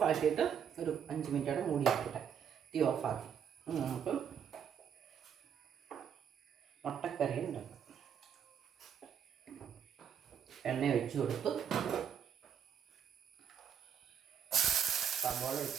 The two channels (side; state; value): left; quieter; 7.9 dB